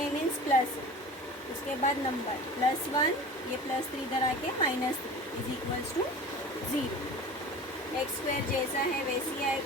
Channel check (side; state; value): both; normal; correlation 0.38